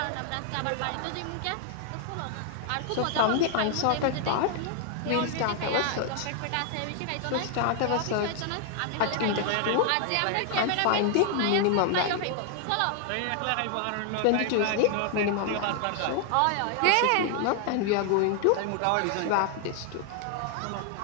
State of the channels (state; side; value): different; both; correlation 0.00